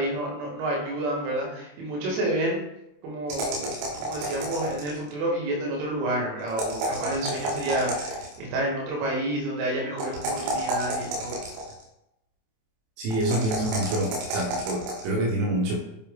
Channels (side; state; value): left; late; 27 ms